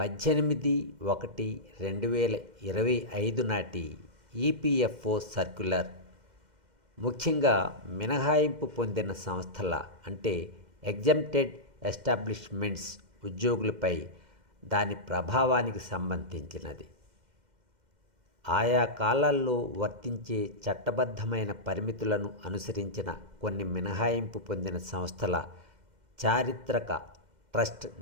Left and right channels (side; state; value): left; late; 2.1 ms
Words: నాటి ఈపీఎఫ్ఓ సర్క్యులర్, ముఖ్యంగా మినహాయింపు పొందిన సంస్థల అంటే ఎగ్జంప్టెడ్ ఎస్టాబ్లిష్మెంట్స్ ఉద్యోగులపై దాని ప్రభావానికి సంబంధించినది. ఆయా కాలాల్లో వర్తించే చట్టబద్ధమైన పరిమితులను అనుసరించిన కొన్ని మినహాయింపు పొందిన సంస్థల చారిత్రక ట్రస్ట్